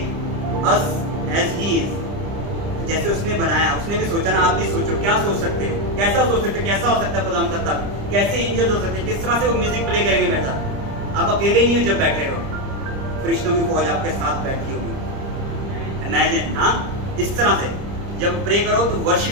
us as He is। जैसे उसने बनाया, उसने भी सोचा ना। आप भी सोचो, क्या सोच सकते हो, कैसा सोच सकते हो, कैसा हो सकता है खुदा का तख्त, कैसे एंजल्स हो सकते हैं, किस तरह से वो म्यूजिक प्ले करेंगे बैठा। आप अकेले नहीं हो जब बैठे हो, फरिश्तों की फौज आपके साथ बैठी होगी। इमेजिन, हाँ, इस तरह से जब प्रे करो तो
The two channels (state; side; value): late; left; 30 ms